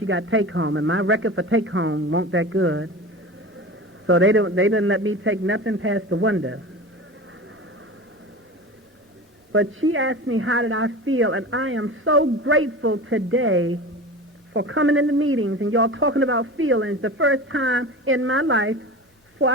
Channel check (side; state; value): both; normal; correlation 0.33